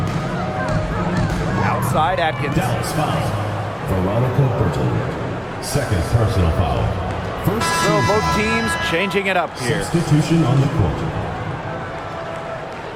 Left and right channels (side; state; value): both; identical; correlation 1.00